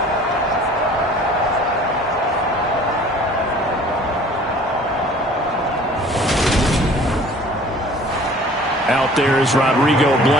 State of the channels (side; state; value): both; normal; correlation 0.49